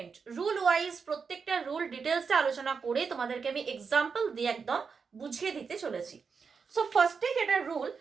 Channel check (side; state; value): left; quieter; 5.6 dB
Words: Rule wise প্রত্যেকটা রুল ডিটেলসে আলোচনা করে তোমাদেরকে আমি এক্সাম্পল দিয়ে একদম বুঝিয়ে দিতে চলেছি। সো ফার্স্টে যেটা রুল,